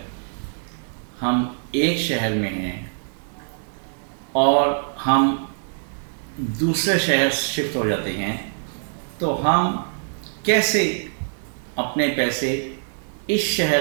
ہم ایک شہر میں ہیں اور ہم دوسرے شہر شفٹ ہو جاتے ہیں تو ہم کیسے اپنے پیسے اس شہر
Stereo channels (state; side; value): silent; left; digital silence